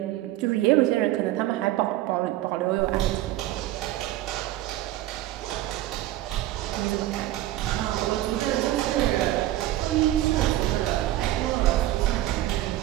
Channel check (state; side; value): quieter; left; 15.0 dB